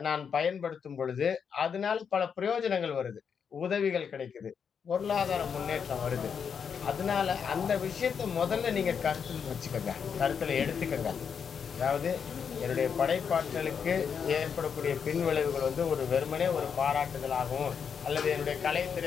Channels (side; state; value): right; quieter; 6.8 dB